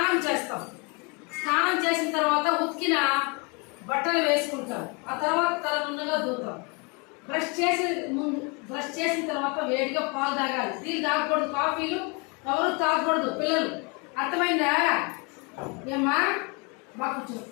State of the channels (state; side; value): quieter; right; 31.5 dB